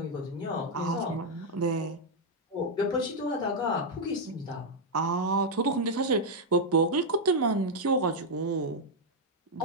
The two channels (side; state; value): both; normal; correlation -0.02